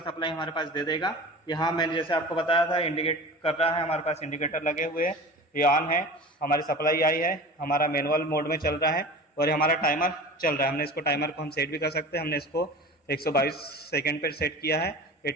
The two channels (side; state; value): both; normal; correlation 0.36